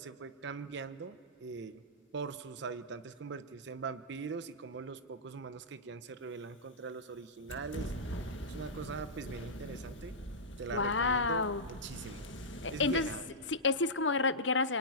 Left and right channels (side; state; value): both; normal; correlation -0.13